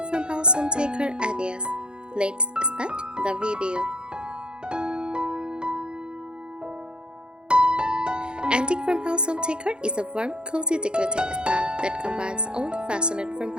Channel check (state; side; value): late; left; 0.050 ms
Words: farmhouse home decor ideas. Let's start the video. Antique farmhouse home decor is a warm, cozy decorating style that combines old-fashioned